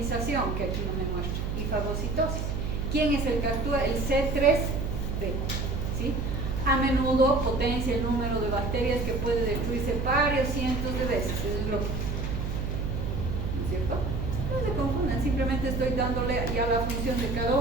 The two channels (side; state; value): right; noise; hum, 3 dB below the sound